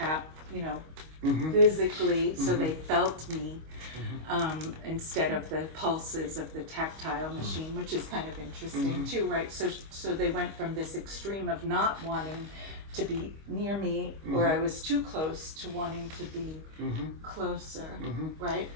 you know, physically, so they felt me, instead of the pulses of the tactile machine, which is kind of interesting too, right? So they went from this extreme of not wanting to be near me, or I was too close, to wanting to be closer, right?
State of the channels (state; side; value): late; left; 25 ms